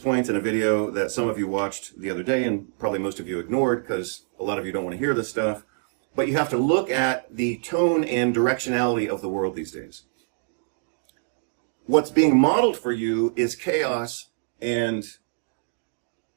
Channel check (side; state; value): left; silent; digital silence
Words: in a video that some of you watched the other day, and probably most of you ignored because a lot of you don't want to hear this stuff. But you have to look at the tone and directionality of the world these days. What's being modeled for you is chaos and